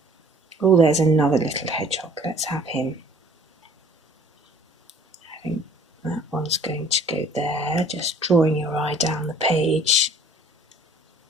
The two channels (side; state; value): both; normal; correlation 0.53